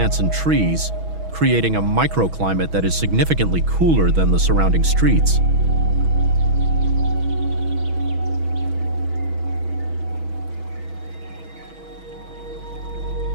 and trees, creating a microclimate that is significantly cooler than the surrounding streets.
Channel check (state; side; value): late; left; 6.2 ms